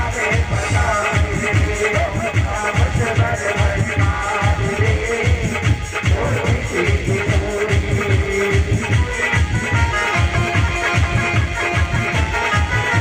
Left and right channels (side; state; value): both; identical; correlation 1.00